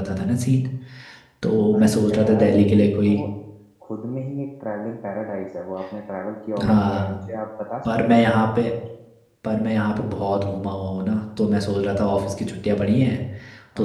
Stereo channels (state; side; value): identical; both; correlation 1.00